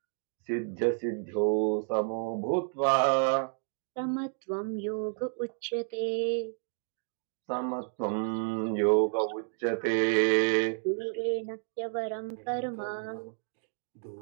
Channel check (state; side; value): silent; left; 57 dB below the other